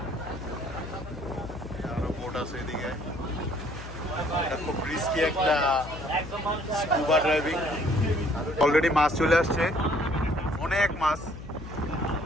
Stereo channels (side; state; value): left; noise; hum, 11 dB below the sound